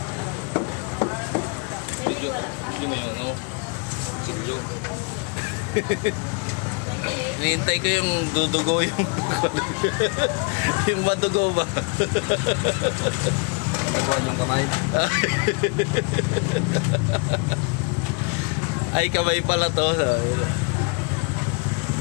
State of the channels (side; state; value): right; quieter; 33.9 dB